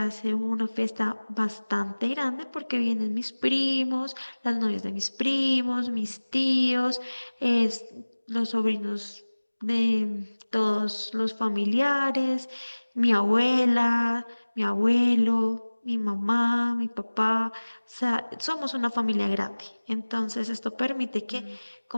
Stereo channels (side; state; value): both; inverted; correlation -1.00